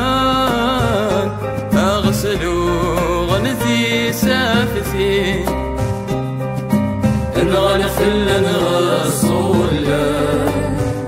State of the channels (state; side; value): identical; both; correlation 1.00